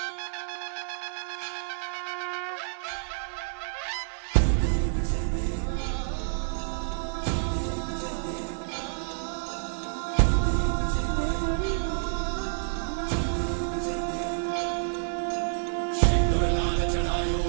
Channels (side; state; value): left; silent; digital silence